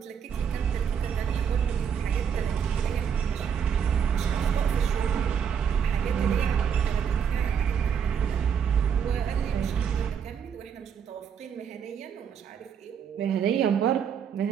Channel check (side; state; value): left; quieter; 7.6 dB